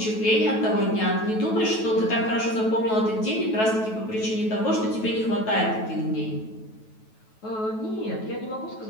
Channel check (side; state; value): right; late; 9.2 ms